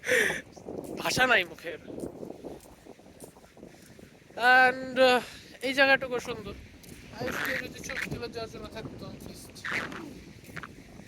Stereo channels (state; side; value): identical; both; correlation 1.00